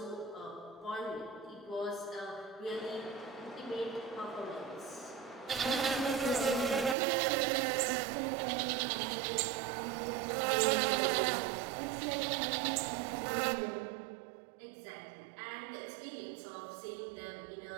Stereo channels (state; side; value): drops out; left; at 7.0 s